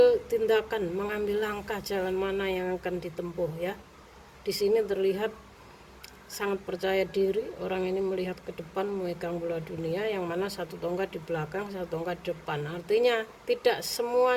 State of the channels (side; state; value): both; identical; correlation 1.00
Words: tindakan, mengambil langkah jalan mana yang akan ditempuh ya. Di sini terlihat sangat percaya diri, orang ini melihat ke depan, memegang bola dunia, yang mana satu tongkat di belakang, satu tongkat di depan. Artinya tidak